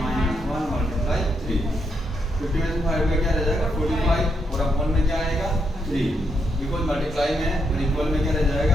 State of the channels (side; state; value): both; normal; correlation 0.79